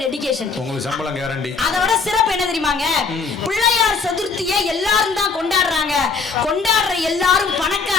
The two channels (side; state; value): right; quieter; 4.9 dB